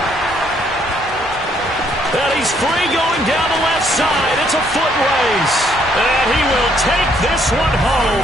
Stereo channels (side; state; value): both; normal; correlation 0.69